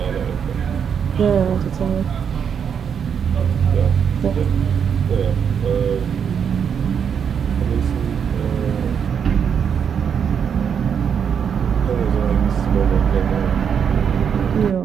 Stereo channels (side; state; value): left; quieter; 7.4 dB